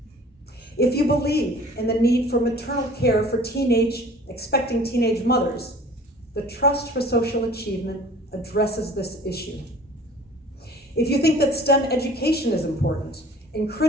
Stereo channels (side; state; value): both; normal; correlation 0.47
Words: If you believe in the need for maternal care for expecting teenage mothers, the Trust for Social Achievement addresses this issue. If you think that STEM education is important and